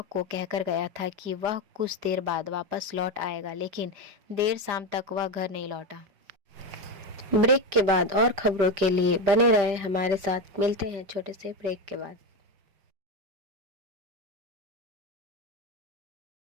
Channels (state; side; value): late; left; 4.9 ms